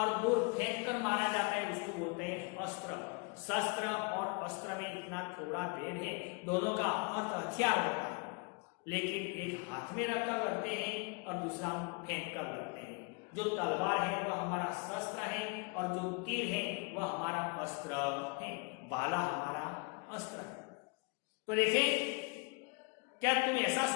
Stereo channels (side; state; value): right; quieter; 31.7 dB